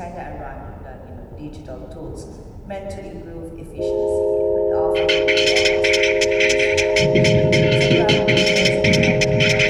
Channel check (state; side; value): identical; both; correlation 1.00